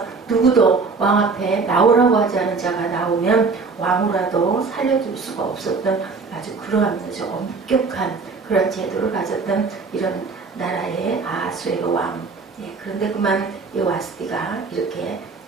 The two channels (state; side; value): quieter; left; 4.4 dB